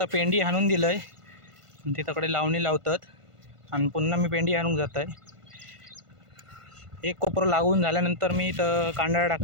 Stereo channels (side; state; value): left; late; 1.5 ms